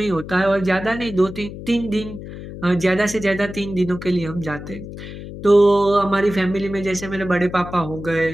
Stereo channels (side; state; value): left; noise; hum, 11 dB below the sound